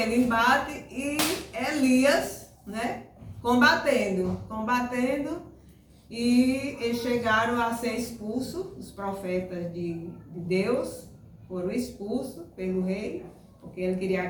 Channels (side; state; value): both; identical; correlation 1.00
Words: embate e Elias, né, combatendo, e eles chegaram a ser expulsos, os profetas de Deus foram expulsos pelo rei, porque ele queria